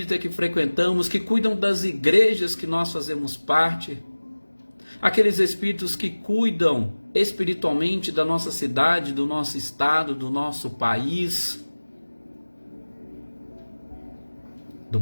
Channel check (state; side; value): inverted; both; correlation -1.00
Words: que frequentamos, que cuidam das igrejas que nós fazemos parte, aqueles espíritos que cuidam espiritualmente da nossa cidade, do nosso estado, do nosso país, do